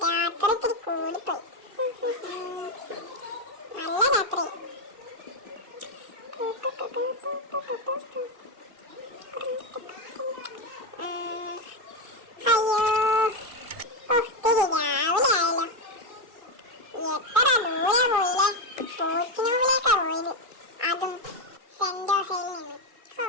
രാത്രി ഇത്തിരി കൂടിപ്പോയി. നല്ല രാത്രി. അയ്യോ ഒത്തിരി രാവിലെ ആയല്ലോ. എത്ര ദൂരെ പോയില്ലേ. പോച്ചിനോവിലേക്കാ പോയത്, അതും സെന്റ് ജോസയിൽ നിന്ന്.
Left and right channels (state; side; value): late; left; 2.1 ms